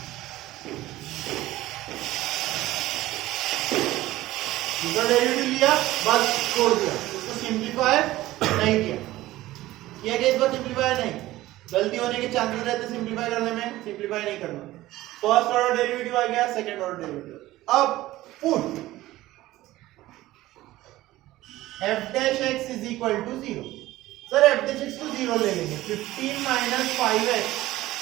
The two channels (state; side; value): quieter; left; 16.5 dB